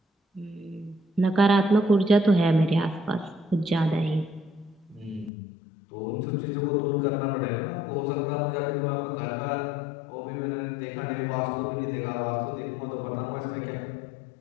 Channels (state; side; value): drops out; right; at 5.3 s